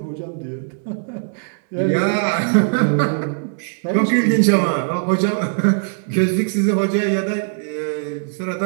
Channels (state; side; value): silent; left; 66 dB below the other